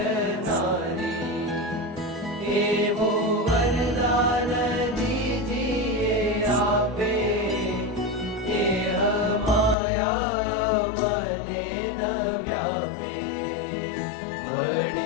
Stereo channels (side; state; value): right; drops out; at 9.8 s